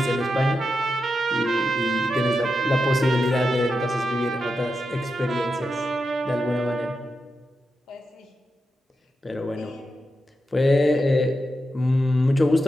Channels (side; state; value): both; normal; correlation 0.88